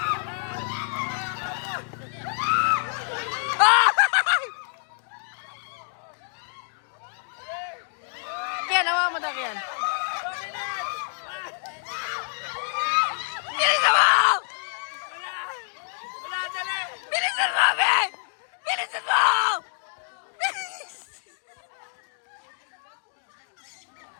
Kaya nawa mo daw yan. Bilisan mo! Bilisan mo, Be! Bilisan mo!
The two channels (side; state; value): right; silent; digital silence